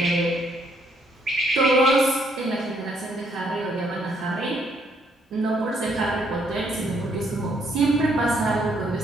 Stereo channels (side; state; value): both; normal; correlation 0.70